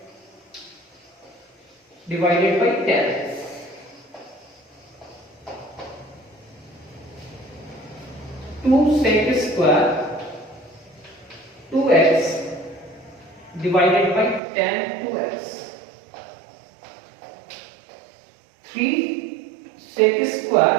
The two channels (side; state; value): left; drops out; at 14.4 s